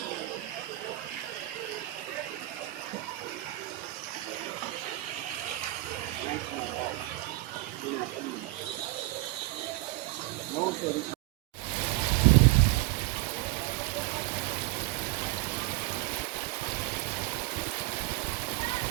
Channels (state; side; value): quieter; left; 19.6 dB